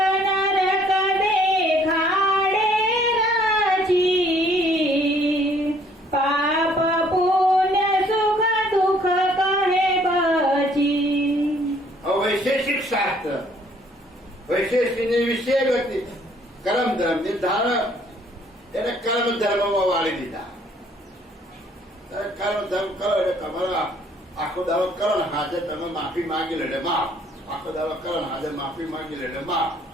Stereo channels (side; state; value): both; normal; correlation 0.62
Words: નરક દેખાડે રાજી પાપ પુણ્ય સુખ દુઃખ કહે બચી. વૈશેષિક શાસ્ત્ર વૈશેષની વિશે ગતિ કર્મ ધર્મ ધારણ એને કર્મ ધર્મમાં વાળી દીધા. કર્મ ધર્મ કરો એટલે તમારા આખો દાવો કરો ને હાજર તમે માફી માંગી લે એટલે માફ. આખો દાવો કરો ને હાજર માફી માંગી લે એટલે માફ.